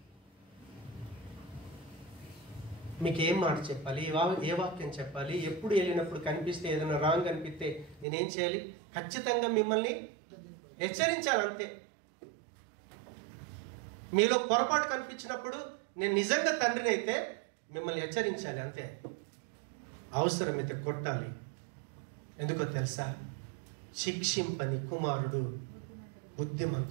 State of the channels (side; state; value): left; drops out; at 8.1 s